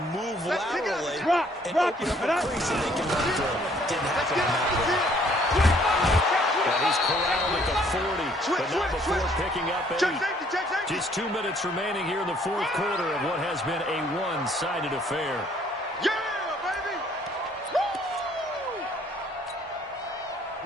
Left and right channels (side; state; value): both; normal; correlation 0.62